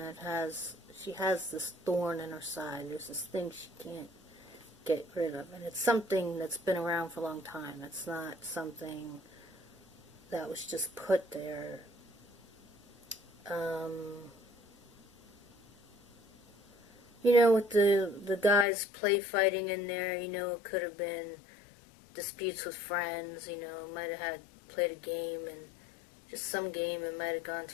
she has this thorn in her side. There's this thing she can't get rid of. And it's something that's been around for a long time. It's not something that was just put there. You know, with the guys play fighting in there, you know, it could have been disputes with friends, you know, might have played a game, and just some game, it might have gone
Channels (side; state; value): right; drops out; at 18.7 s